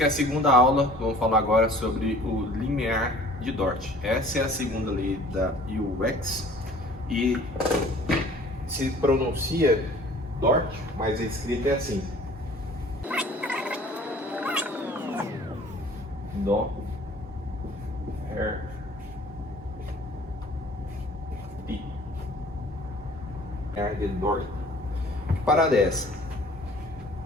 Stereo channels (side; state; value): both; normal; correlation 0.51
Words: é a segunda aula. Vamos falar agora sobre o limiar de Dort. Essa é a segunda lei da UX e se pronuncia Dort, mas a escrita é assim: Dó, Ré, Ti. Limiar de Dort. Que parada é essa?